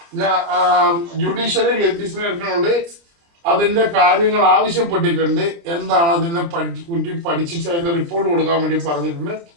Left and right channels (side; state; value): left; late; 29 ms